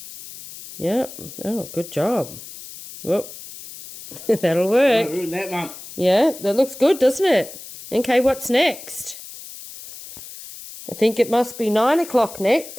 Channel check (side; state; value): left; noise; hiss, 14 dB below the sound